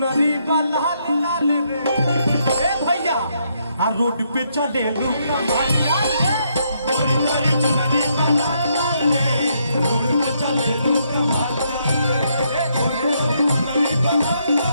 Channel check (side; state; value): both; inverted; correlation -0.75